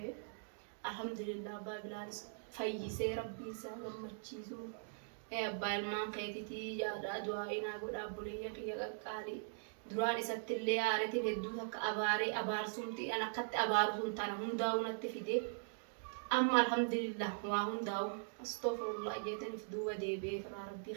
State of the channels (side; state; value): left; silent; digital silence